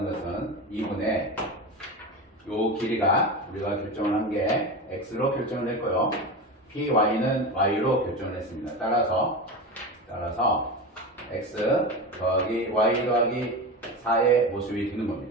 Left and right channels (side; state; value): both; normal; correlation 0.24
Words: 것은 2분의 요 길이가 우리가 결정을 한 게 x로 결정을 했고요. py는 y로 결정을 했습니다. 따라서 x 더하기 y 더하기 4의 모습이 되는